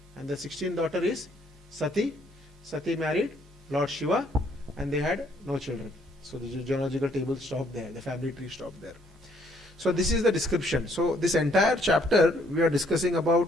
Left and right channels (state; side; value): normal; both; correlation 0.67